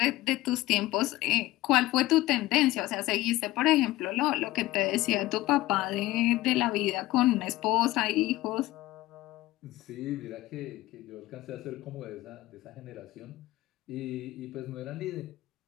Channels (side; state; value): right; quieter; 17.3 dB